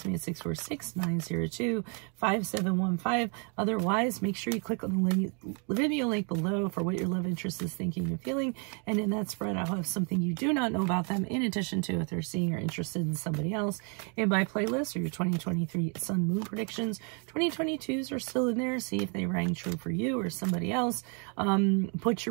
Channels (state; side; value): quieter; left; 37.5 dB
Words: me at 646-902-5715. Otherwise, make sure you click on the video link below for what your love interest is thinking and feeling. And in that spread, I'll have something you do not know about them, in addition to if they're seeing or interested in somebody else. In my playlist are your 2023 Sun Moon predictions. 2022s are still in there. See if they rang true for you or somebody else. Put